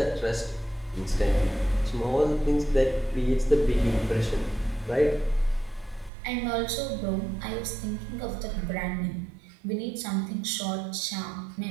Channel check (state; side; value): drops out; left; at 6.1 s